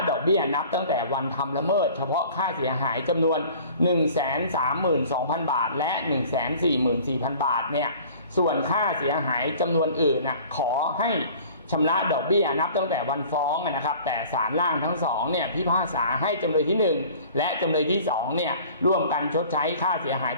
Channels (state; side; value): inverted; both; correlation -0.47